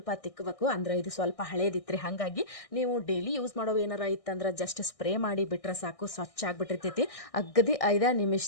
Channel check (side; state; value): right; late; 1.6 ms